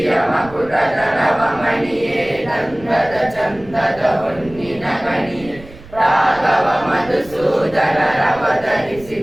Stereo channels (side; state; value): right; noise; rumble, 19 dB below the sound